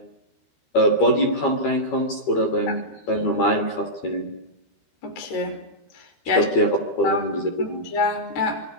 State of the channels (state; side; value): late; right; 13 ms